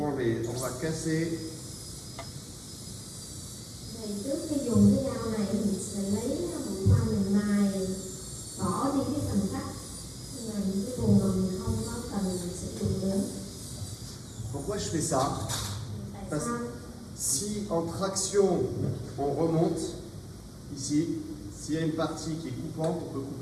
on va casser. Thì trước khi dùng cái dao này mình sẽ lấy mũi khoan mình mài bỏ đi cái phần cắt là những cái vùng mà mình không có cần sử dụng nữa. Pourquoi je fais ça? Tại sao? Si en traction on remonte ici, s'il y a une partie qui est coupante, on peut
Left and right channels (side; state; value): both; identical; correlation 1.00